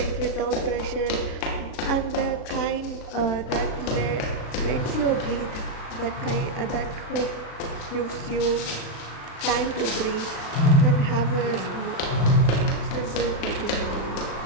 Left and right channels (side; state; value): right; late; 36 ms